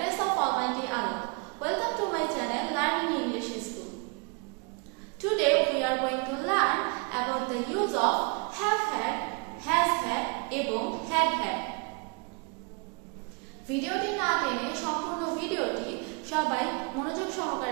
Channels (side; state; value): left; quieter; 32.2 dB